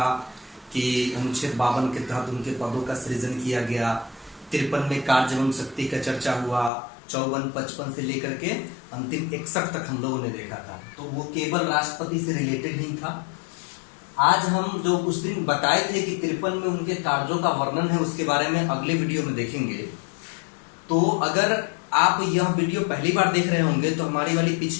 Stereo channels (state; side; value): drops out; right; at 6.7 s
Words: कि अनुच्छेद 52 के तहत उनके पदों का सृजन किया गया। 53 में कार्य एवं शक्ति का चर्चा हुआ। 54, 55 से लेकर के अंतिम 61 तक हम लोगों ने देखा था, तो वो केवल राष्ट्रपति से रिलेटेड ही था। आज हम जो उस दिन बताए थे कि 53 में उनके कार्यों का वर्णन है, उसके बारे में अगले वीडियो में देखेंगे। तो अगर आप यह वीडियो पहली बार देख रहे होंगे तो हमारी